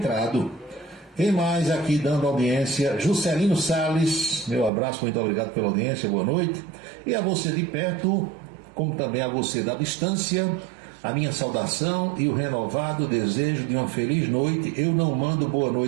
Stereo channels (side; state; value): left; drops out; at 4.7 s